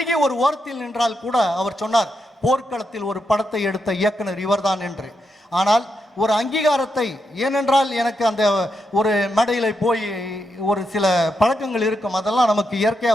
ஒரு ஓரத்தில் நின்றால் கூட அவர் சொன்னார், போர்க்களத்தில் ஒரு படத்தை எடுத்த இயக்குனர் இவர்தான் என்று. ஆனால் ஒரு அங்கீகாரத்தை, ஏனென்றால் எனக்கு அந்த ஒரு மேடையில் போய் ஒரு சில பழக்கங்கள் இருக்கும், அதெல்லாம் நமக்கு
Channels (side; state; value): both; normal; correlation 0.83